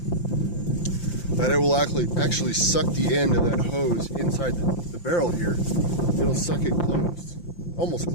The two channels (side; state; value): right; late; 5.8 ms